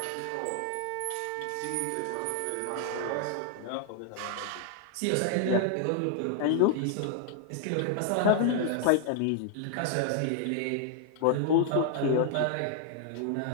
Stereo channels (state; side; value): different; both; correlation 0.00